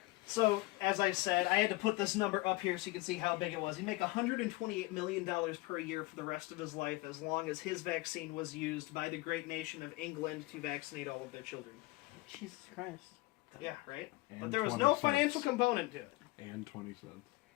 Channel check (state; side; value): quieter; right; 21.1 dB